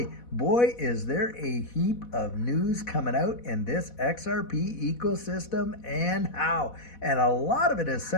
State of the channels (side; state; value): right; late; 4.1 ms